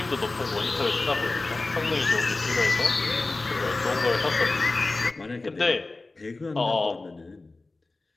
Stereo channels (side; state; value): right; quieter; 3.3 dB